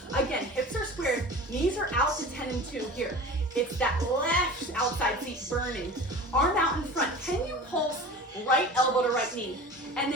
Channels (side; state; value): both; normal; correlation 0.37